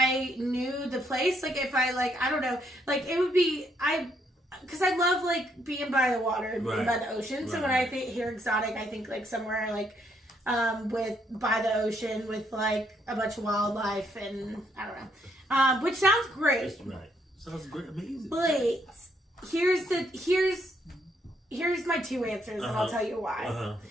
knew the place. Like, if I, like, I don't know, like, it would be, because I love, like, being by the water and being by the ocean. So when I hear exotic, I think, like, somewhere, like, by the ocean with, like, a bunch of wildlife and, I don't know. Which sounds great. Right. Sounds great. Amazing. But here's my two answers, and I'll tell you why.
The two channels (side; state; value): both; normal; correlation 0.73